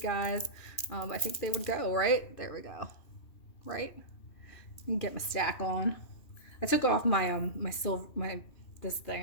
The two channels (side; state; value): right; late; 2.5 ms